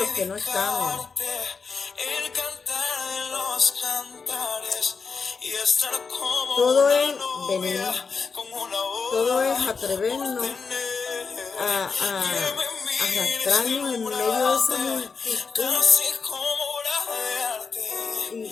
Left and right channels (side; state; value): right; quieter; 5.1 dB